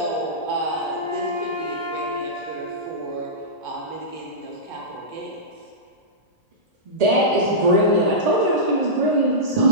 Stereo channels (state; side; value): late; left; 1.8 ms